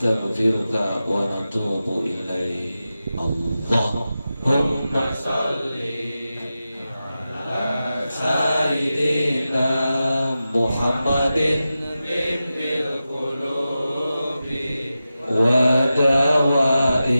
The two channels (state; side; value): inverted; both; correlation -0.93